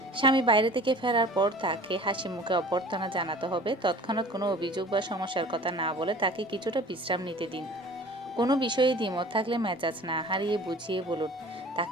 স্বামী বাইরে থেকে ফেরার পর তাকে হাসি মুখে অভ্যর্থনা জানাতে হবে, তৎক্ষণাৎ কোনো অভিযোগ বা সমস্যার কথা না বলে তাকে কিছুটা বিশ্রাম নিতে দিন। কোনো বিষয়ে দ্বিমত থাকলে মেজাজ না হারিয়ে বুঝিয়ে বলুন,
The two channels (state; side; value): normal; both; correlation 0.44